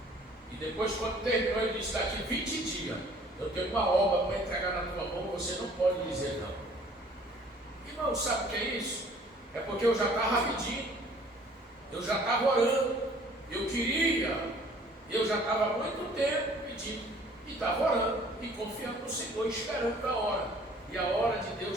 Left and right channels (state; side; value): normal; both; correlation 0.54